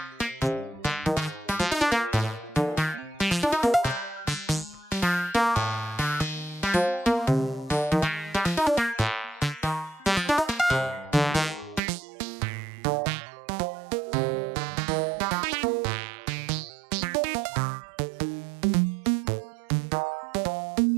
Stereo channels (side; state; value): left; drops out; at 11.8 s